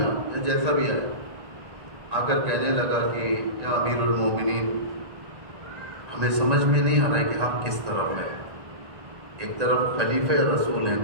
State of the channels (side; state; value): left; late; 1.9 ms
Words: یا جیسا بھی آیا، آ کر کہنے لگا کہ یا امیر المومنین، ہمیں سمجھ میں نہیں آ رہا ہے کہ آپ کس طرف ہیں. ایک طرف خلیفہ رسول ہیں،